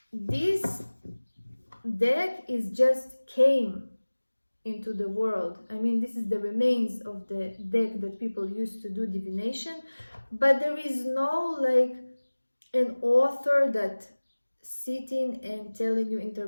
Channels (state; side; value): inverted; both; correlation -1.00